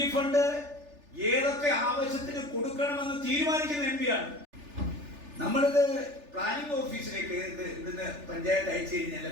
ഫണ്ട് ഏതൊക്കെ ആവശ്യത്തിന് കൊടുക്കണമെന്ന് തീരുമാനിക്കുന്ന MP-യാണ്. നമ്മളിത് പ്ലാനിംഗ് ഓഫീസിലേക്ക് ഇവിടുന്ന് പഞ്ചായത്ത് അയച്ചു കഴിഞ്ഞാൽ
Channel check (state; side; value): late; left; 3.4 ms